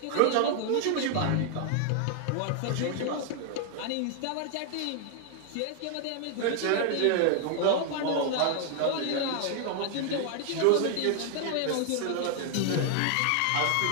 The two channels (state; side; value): different; both; correlation 0.00